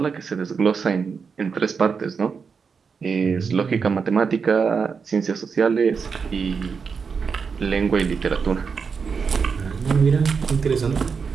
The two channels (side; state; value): left; quieter; 5.7 dB